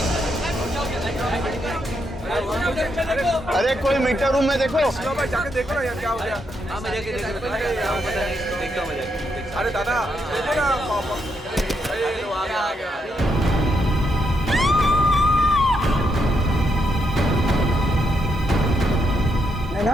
अरे कोई मीटर रूम में देखो। जाके देखो ना यार, क्या हो गया? अरे दादा देखो ना,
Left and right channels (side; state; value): both; normal; correlation 0.79